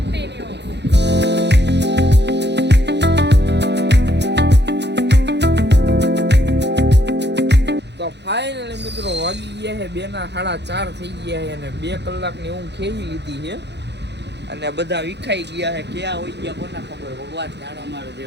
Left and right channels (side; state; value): left; late; 0.50 ms